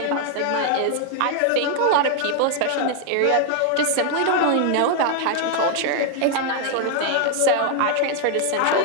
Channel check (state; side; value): different; both; correlation 0.00